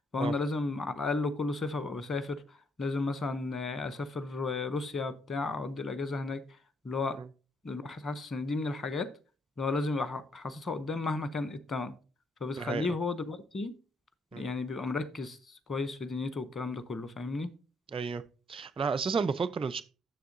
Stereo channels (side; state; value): both; normal; correlation 0.72